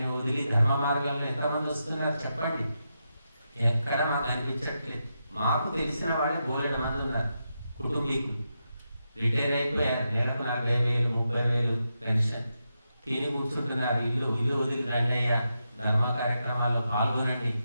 వదిలి ధర్మ మార్గాల్లో ఎంతమంది వస్తున్నారు చెప్పండి? ఎక్కడ మాకు అనిపించట్లేదు. మాకు తెలిసిన వాళ్ళే బోలెడు మంది ఉన్నారు. కుటుంబీకులు రిటైర్ అయిపోయారు, నెలకు 40,000, 30,000 పెన్షన్, తిని కూర్చుంటున్నారు. ఇల్లు వదిలి రండి అయ్యా, ధర్మ కార్యక్రమాల్లో పాల్గొనండి,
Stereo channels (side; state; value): both; inverted; correlation -0.86